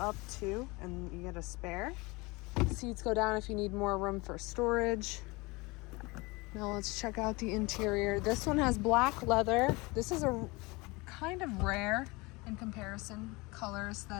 too, and you get a spare. Seats go down if you need more room for storage. Now let's check out the interior. This one has black leather. This is a kind of rare in comparison color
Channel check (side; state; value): right; quieter; 24.8 dB